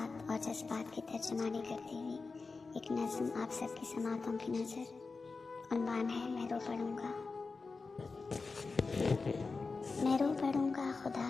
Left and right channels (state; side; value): quieter; right; 4.2 dB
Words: और जज्बात की तर्जुमानी करती हुई एक नज़्म आप सबकी समातों की नज़र। उन्वान है मैं रो पड़ूंगा। मैं रो पड़ूंगा खुदा